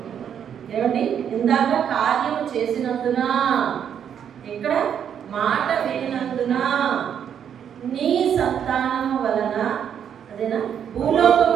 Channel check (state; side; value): quieter; left; 8.6 dB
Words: ఏమండి, ఇందాక కార్యం చేసినందున, ఇక్కడ మాట వినినందున నీ సంతానము వలన, అదేనా,